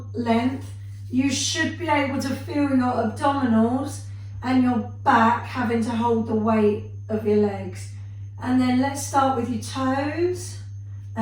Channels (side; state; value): both; identical; correlation 1.00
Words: length, you should be able to feel your abdominals and your back having to hold the weight of your legs. And then let's start with your toes